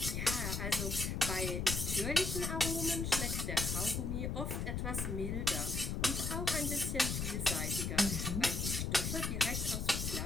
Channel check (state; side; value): noise; left; rumble, 1 dB below the sound